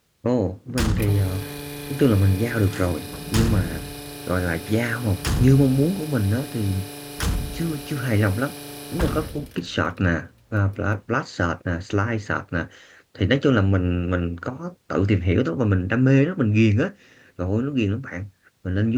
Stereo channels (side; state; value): both; identical; correlation 1.00